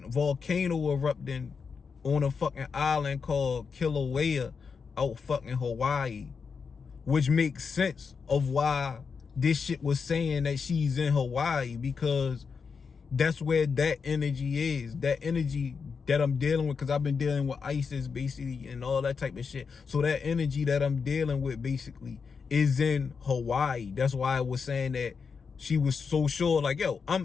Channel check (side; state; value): right; quieter; 5.6 dB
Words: volcano erupting on a fucking island called Kilauea out fucking Hawaii, which makes sense of why this shit was saying that she's in Hawaii, because that's where that energy is. That energy that I'm dealing with, because I've been dealing with ISIS basically and all that type of shit. So that energy that I'm dealing with basically is in Hawaii. That's why I was saying that she was so sure, like, yo, I'm